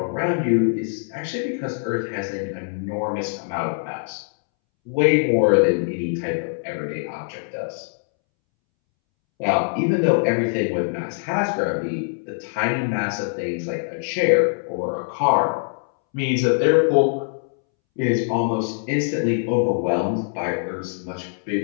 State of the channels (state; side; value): silent; right; 64 dB below the other